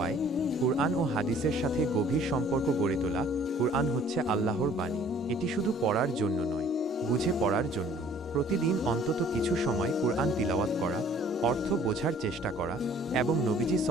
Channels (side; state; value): both; normal; correlation 0.55